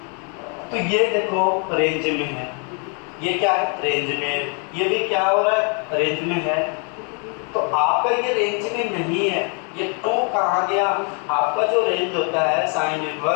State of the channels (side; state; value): right; quieter; 38.2 dB